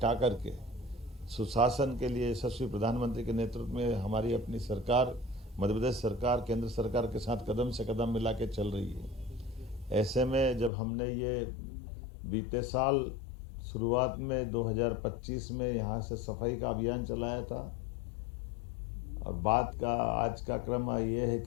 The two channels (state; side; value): drops out; right; at 10.7 s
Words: करके सुशासन के लिए यशस्वी प्रधानमंत्री के नेतृत्व में हमारी अपनी सरकार, मध्य प्रदेश सरकार केंद्र सरकार के साथ कदम से कदम मिला के चल रही है। ऐसे में जब हमने ये बीते साल शुरुआत में 2025 में यहाँ से सफाई का अभियान चलाया था, और बात का आज का क्रम ये है